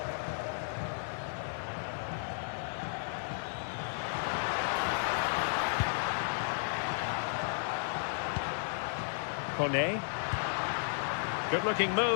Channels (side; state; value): right; silent; 55 dB below the other